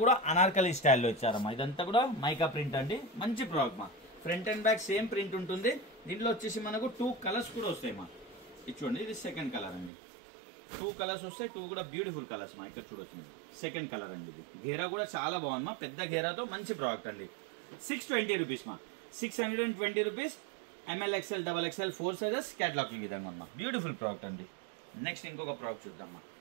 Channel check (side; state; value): left; drops out; at 9.9 s